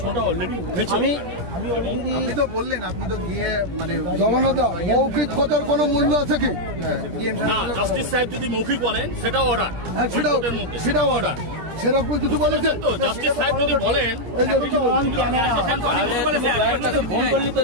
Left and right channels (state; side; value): late; left; 17 ms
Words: অলরেডি উঠেছে। আপনি তো বললেন, আপনি তো গিয়ে মানে জগন্নাথ মৌখিক কথার কোনো মূল্য আছে কি? জাস্টিস সাহেব যদি মৌখিক বলেন সেটাও অর্ডার, সেটাও অর্ডার সেরকম কিছু বলেছেন তো। জাস্টিস সাহেব যদি বলেন